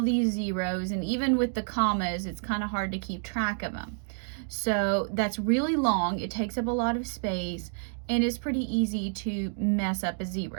these zeros, and even with the commas, it's kind of hard to keep track of them. So that's really long, it takes up a lot of space, and it's pretty easy to mess up a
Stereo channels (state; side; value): silent; left; 55 dB below the other